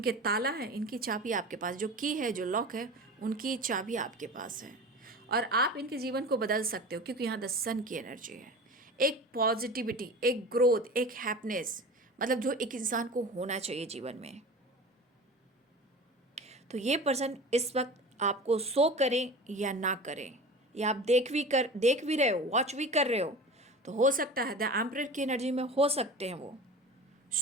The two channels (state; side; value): normal; both; correlation 0.35